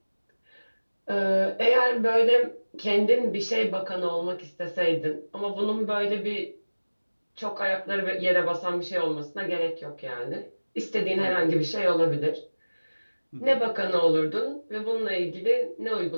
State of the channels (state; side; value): inverted; both; correlation -1.00